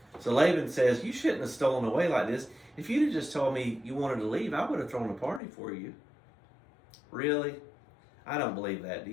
So Laban says, you shouldn't have stolen away like this. If you'd have just told me you wanted to leave, I would have thrown a party for you. Really? I don't believe that, do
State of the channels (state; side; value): drops out; right; at 5.4 s